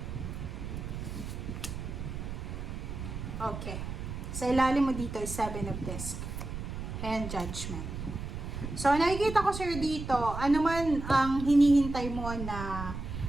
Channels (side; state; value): right; noise; rumble, 7 dB below the sound